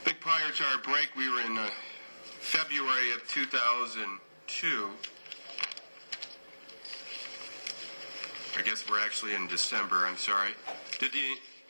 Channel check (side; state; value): both; inverted; correlation -1.00